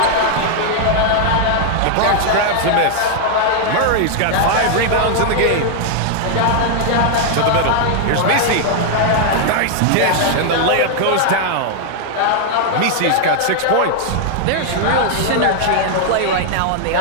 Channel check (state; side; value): different; both; correlation 0.00